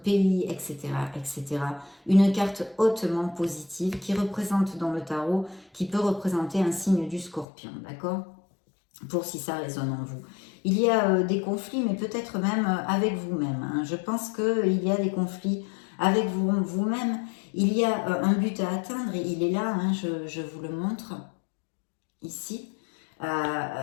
etc., etc. Une carte hautement positive qui représente dans le tarot, qui peut représenter un signe du scorpion, d'accord ? Pour si ça résonne en vous. Il y a des conflits, mais peut-être même avec vous-même. Hein. Je pense qu'il y a des conflits avec vous-même. Il y a un but à atteindre, et il est là, hein, je vous le montre ici.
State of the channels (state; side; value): drops out; right; at 7.5 s